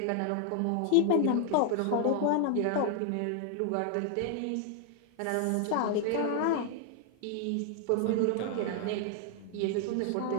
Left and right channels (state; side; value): different; both; correlation 0.00